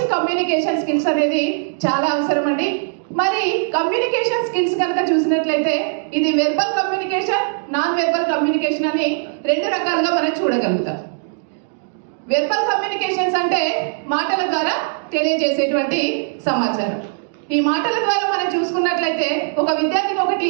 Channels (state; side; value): silent; left; digital silence